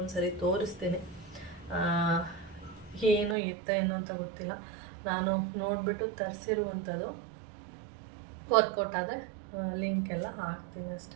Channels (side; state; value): left; drops out; at 3.4 s